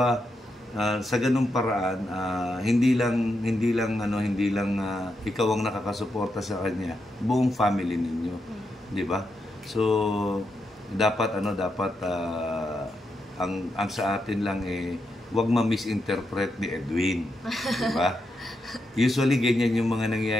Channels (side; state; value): both; normal; correlation 0.84